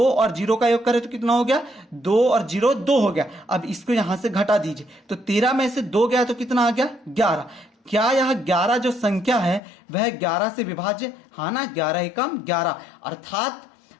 और 0 का योग करें तो कितना हो गया, 2 और 0 2 हो गया। अब इसको यहां से घटा दीजिए तो 13 में से 2 गया तो कितना आ गया, 11। क्या यह 11 जो संख्या है वह 11 से विभाज्य, हाँ ना, 11 एकम 11, अर्थात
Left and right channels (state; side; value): drops out; right; at 9.6 s